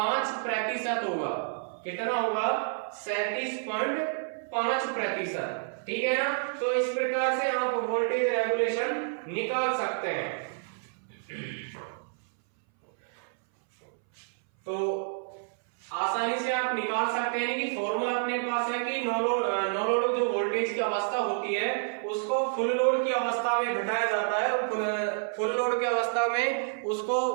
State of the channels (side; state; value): left; silent; 58 dB below the other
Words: होगा। कितना होगा 37.5%, ठीक है ना। तो इस प्रकार से आप वोल्टेज रेगुलेशन निकाल सकते हैं। तो आसानी से आप निकाल सकते हैं कि फॉर्मूला अपने पास है कि नो लोड जो वोल्टेज की अवस्था होती है उसको फुल लोड की अवस्था में घटाया जाता है, और फुल लोड की अवस्था में